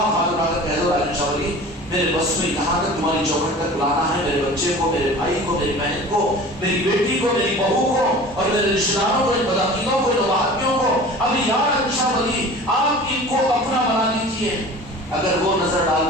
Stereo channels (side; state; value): both; normal; correlation 0.40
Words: ہاتھ اٹھا کر کہہ دو راجن شاہ ولی میرے بس میں یہاں تک تمہاری چوکھٹ تک بلانا ہے، میرے بچے کو، میرے بھائی کو، میری بہن کو، میری بیٹی کو، میری بہو کو اور میرے رشتہ داروں کو، ان بدعقیدوں کو، ان وہابیوں کو، ابھی یا راجن شاہ ولی آپ ان کو اپنا بنا لیجیے۔ اگر وہ نظر ڈال